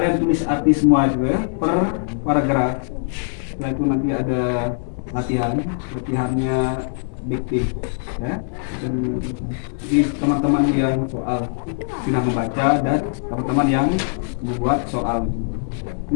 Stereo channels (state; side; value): silent; right; digital silence